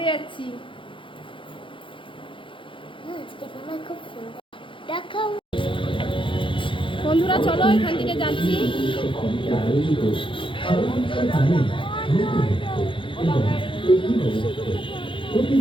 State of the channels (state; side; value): late; right; 0.25 ms